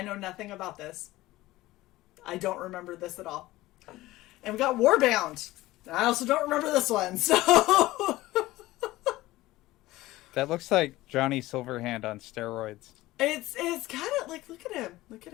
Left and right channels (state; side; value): quieter; right; 17.7 dB